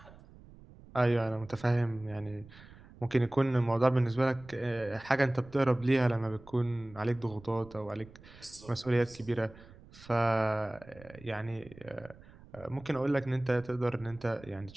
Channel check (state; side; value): noise; right; rumble, 21 dB below the sound